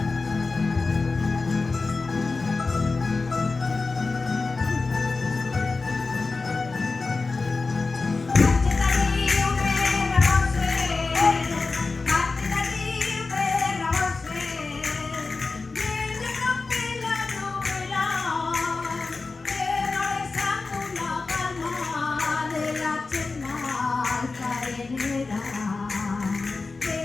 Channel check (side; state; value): right; quieter; 3.9 dB